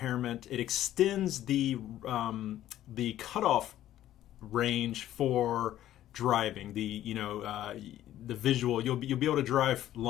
It extends the cutoff range for driving. The visual. You'll be able to drive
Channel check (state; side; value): quieter; right; 12.9 dB